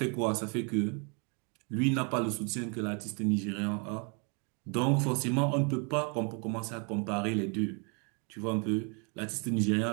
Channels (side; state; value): left; quieter; 35.7 dB